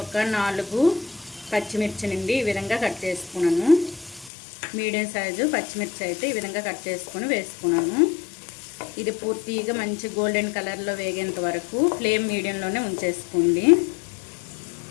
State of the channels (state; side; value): drops out; right; at 4.3 s